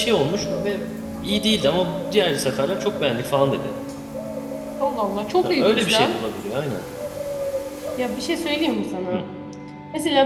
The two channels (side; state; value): both; identical; correlation 1.00